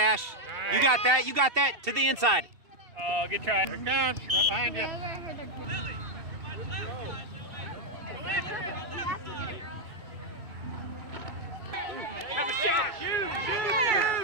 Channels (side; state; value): left; late; 2.7 ms